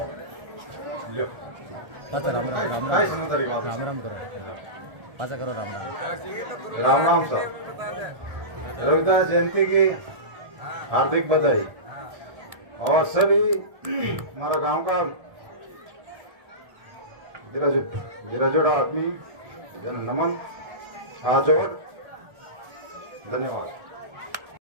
पाचा राम राम राम राम राम राम करो, पाचा करो राम राम राम राम सर। रविदास जयंती की हार्दिक बधाई और सभी हमारा गांव का गिराजोड़ा आदमी जन नमन, हाथ जोड़, धन्यवाद,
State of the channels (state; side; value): late; left; 1.6 ms